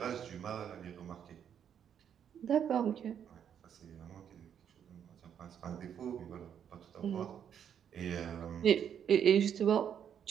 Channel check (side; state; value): left; quieter; 8.6 dB